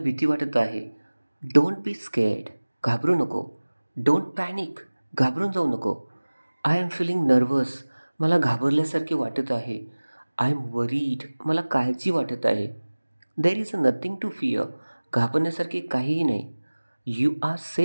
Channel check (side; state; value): both; inverted; correlation -1.00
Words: वाटत आहे. Don't be scared. घाबरू नको. Don't panic. घाबरून जाऊ नको. I am feeling nervous. मला घाबरल्यासारखे वाटत आहे. I am worried. मला काळजी वाटत आहे. There is nothing to fear. घाबरण्यासारखे काहीही नाही. You are